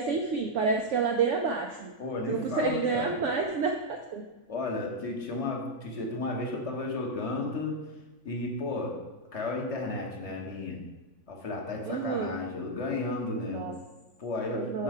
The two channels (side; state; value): left; late; 3.5 ms